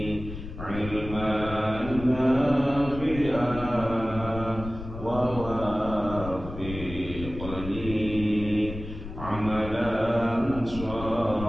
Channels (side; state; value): left; noise; rumble, 11 dB below the sound